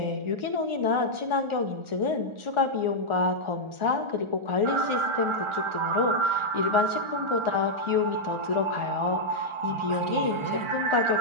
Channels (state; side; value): late; left; 1.4 ms